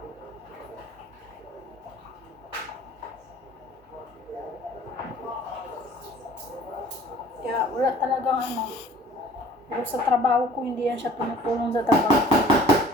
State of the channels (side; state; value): both; normal; correlation 0.50